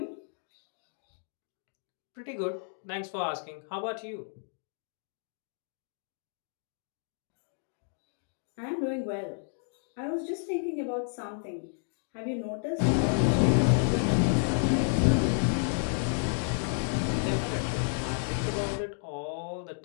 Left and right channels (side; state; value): right; silent; digital silence